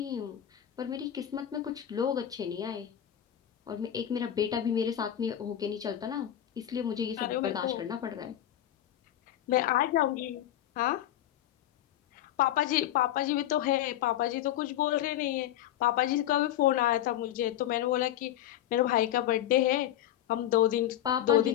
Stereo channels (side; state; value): right; quieter; 12.0 dB